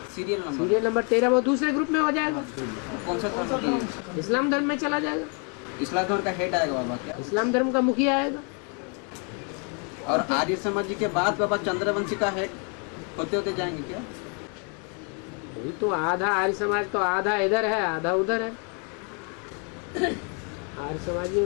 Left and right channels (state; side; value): quieter; right; 37.6 dB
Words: Serial number. Serial number 13 वो दूसरे ग्रुप में हो जाएगा, कौन सा धर्म की? इस्लाम धर्म में चला जाएगा। इस्लाम धर्म का हेड आएगा बाबा क्या? इस्लाम धर्म का मुखिया आएगा। और आर्य समाज जी के बाद बाबा चंद्रवंशी का हेड होते होते जाएंगे क्या? वही तो, आधा आर्य समाज तो आधा इधर है आधा उधर है। आर्य समाजियों